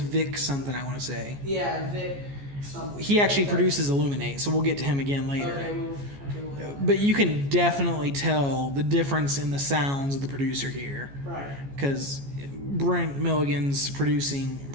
something, I want to say. Yeah, Vic something. He actually produces Illuminate, so we'll get to him again later. Okay, but you can definitely tell the difference in the sounds of the producer here. Right. Because Brent Milligan's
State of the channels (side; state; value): left; late; 14 ms